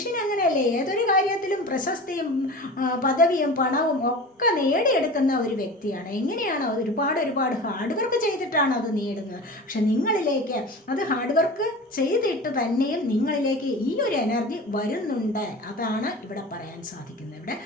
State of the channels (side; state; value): both; normal; correlation 0.34